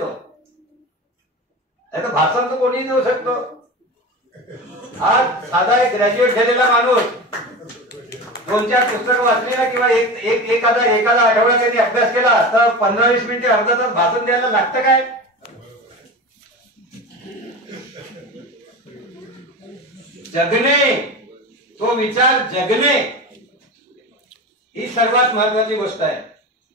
नाही तर भाषण तर कोणीही देऊ शकतो. आज साधा एक ग्रॅज्युएट झालेला माणूस 2-4 पुस्तकं वाचली ना, किंवा एखादा आठवडा त्यांनी अभ्यास केला तर 15-20 मिनिटे, अर्धा तास भाषण द्यायला लागतं काय? जगणे, तो विचार जगणे ही सर्वात महत्वाची गोष्ट आहे.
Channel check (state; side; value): normal; both; correlation 0.28